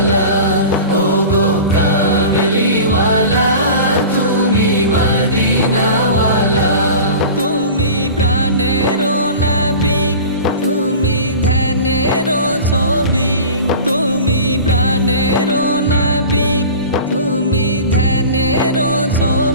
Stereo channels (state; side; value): inverted; both; correlation -0.36